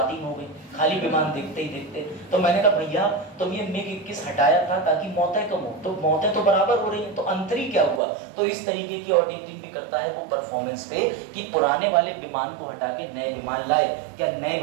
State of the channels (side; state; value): left; drops out; at 8.0 s